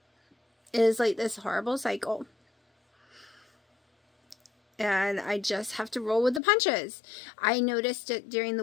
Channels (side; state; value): right; drops out; at 6.4 s